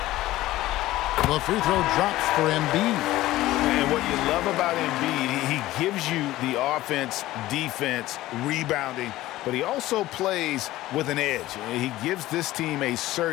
The free throw drops for Embiid. And what you love about Embiid, he gives you the offense, defense, rebounding, but he also plays with an edge. He gives this team a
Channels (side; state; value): right; quieter; 16.2 dB